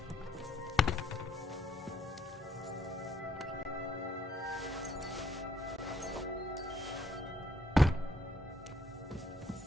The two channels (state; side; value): normal; both; correlation 0.69